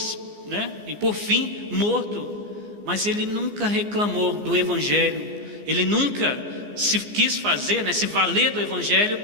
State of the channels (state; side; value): late; left; 14 ms